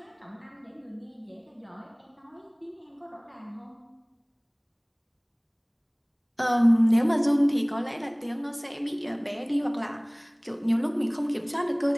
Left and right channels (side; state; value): both; identical; correlation 1.00